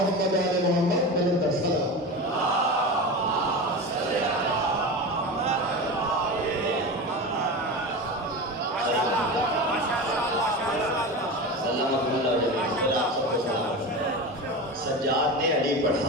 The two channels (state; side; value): normal; both; correlation 0.26